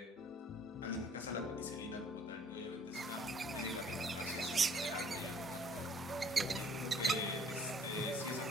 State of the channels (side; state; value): both; normal; correlation 0.58